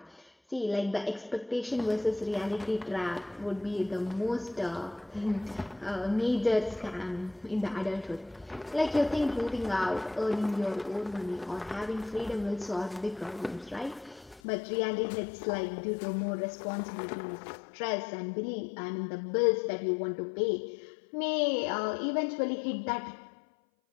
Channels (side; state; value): right; drops out; at 14.4 s